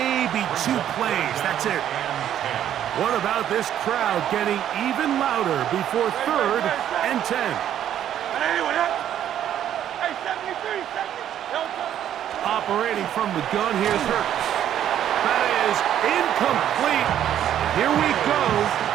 2 plays. That's it. What about this crowd getting even louder before third and 10? Operating from the gun, here's Hurts. That is incomplete. Here we go.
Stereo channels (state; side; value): quieter; left; 10.6 dB